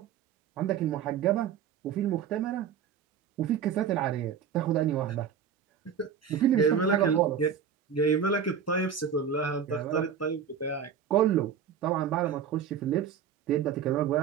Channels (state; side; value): quieter; left; 7.7 dB